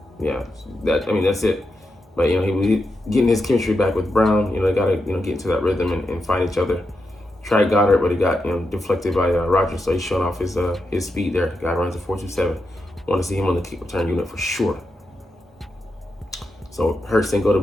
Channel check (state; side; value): normal; both; correlation 0.86